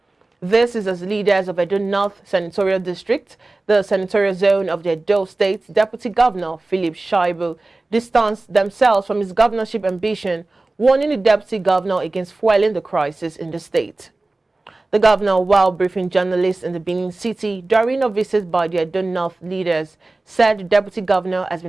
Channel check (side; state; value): left; quieter; 3.1 dB